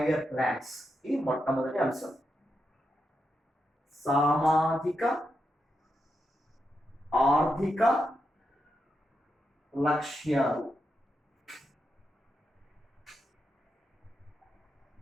plans. ఇది మొట్టమొదటి అంశం. సామాజిక ఆర్థిక లక్ష్యాలు,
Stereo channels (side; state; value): both; normal; correlation 0.85